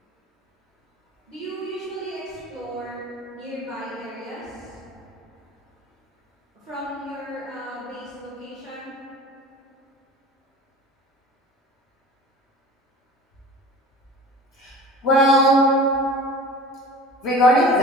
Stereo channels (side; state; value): both; normal; correlation 0.40